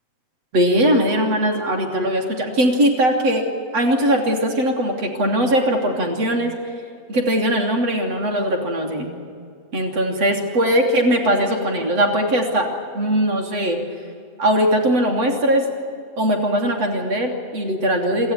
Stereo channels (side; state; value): left; late; 7.9 ms